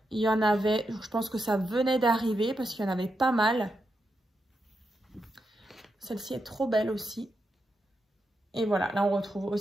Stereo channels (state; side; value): normal; both; correlation 0.85